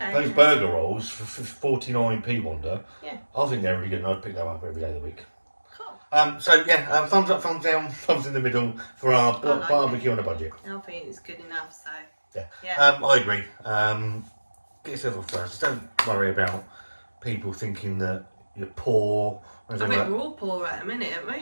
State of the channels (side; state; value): both; inverted; correlation -1.00